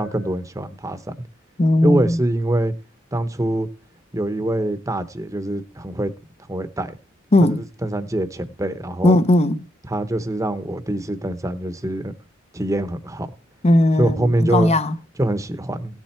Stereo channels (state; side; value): normal; both; correlation 0.83